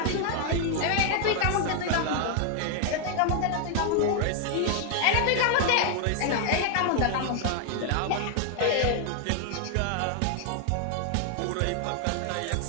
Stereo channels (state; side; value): different; both; correlation 0.00